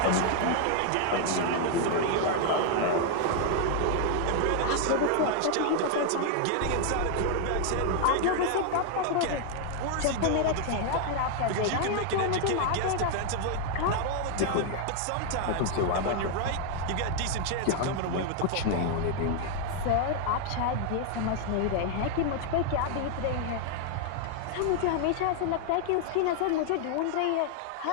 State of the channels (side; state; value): both; different; correlation 0.00